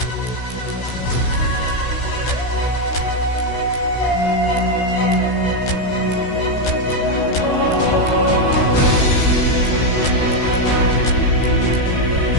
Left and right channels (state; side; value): late; right; 16 ms